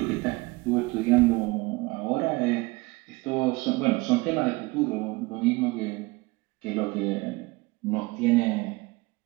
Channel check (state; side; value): quieter; left; 23.3 dB